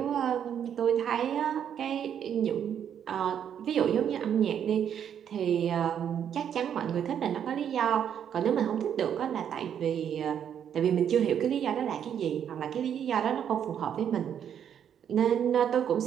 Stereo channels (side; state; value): left; quieter; 8.8 dB